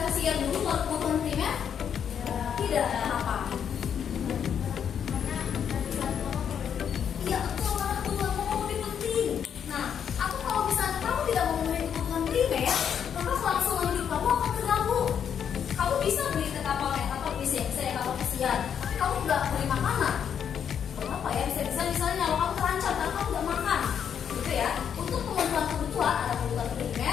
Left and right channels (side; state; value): right; quieter; 8.2 dB